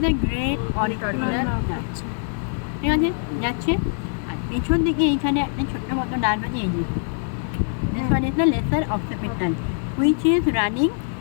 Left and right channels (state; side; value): silent; right; 63 dB below the other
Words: the great auricular nerve. ঠিক আছে? যাচ্ছে। আর পেছন দিকে এইখানে একটা ছোট্ট মতো নার্ভ আছে, এই যে। This one is the lesser occipital, which is running